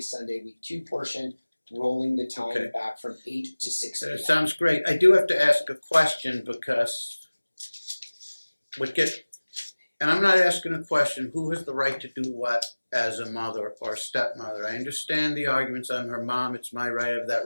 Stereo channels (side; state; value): both; inverted; correlation -1.00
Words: Sunday week 2 portion, rolling the time Okay. back from 8 to 6 p.m. That sounds great. I do have to ask a question because and I'm not asking a question, who has the right to do what as a mother or stepmother? I understand the arguments. I'm her mom. It's my right. I have that